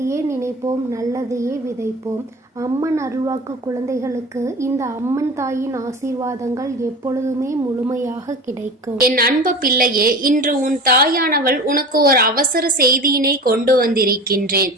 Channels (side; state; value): both; normal; correlation 0.33